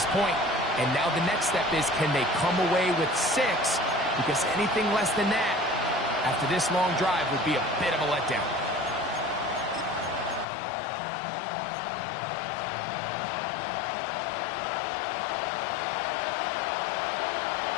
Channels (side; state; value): right; drops out; at 10.5 s